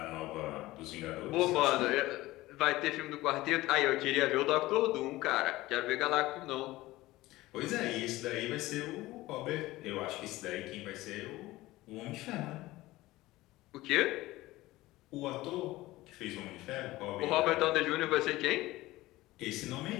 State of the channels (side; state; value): right; quieter; 18.1 dB